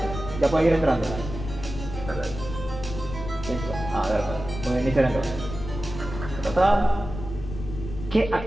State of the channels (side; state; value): left; noise; rumble, 9 dB below the sound